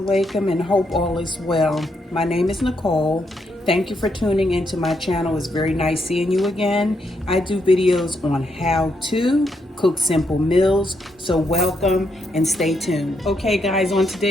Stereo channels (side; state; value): both; normal; correlation 0.78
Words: alaikum, and hope all is well. My name is Nicole. Thank you for tuning into my channel. It's very nice seeing you again. I do videos on how to cook simple meals, so welcome and stay tuned. Okay guys, on